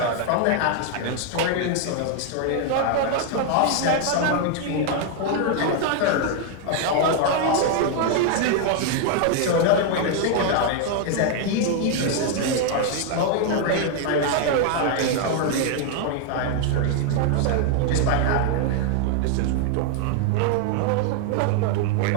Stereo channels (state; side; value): different; both; correlation 0.00